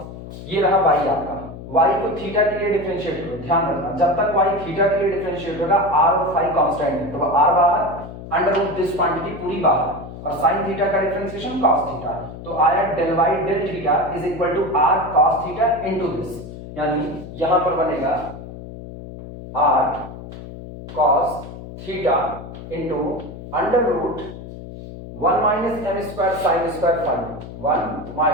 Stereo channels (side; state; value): left; noise; hum, 12 dB below the sound